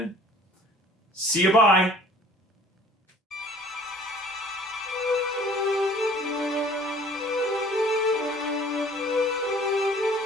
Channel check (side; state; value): both; normal; correlation 0.52